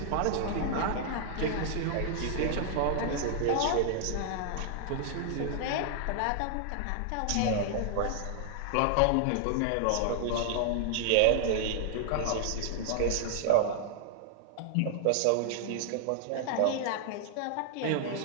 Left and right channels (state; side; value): different; both; correlation 0.00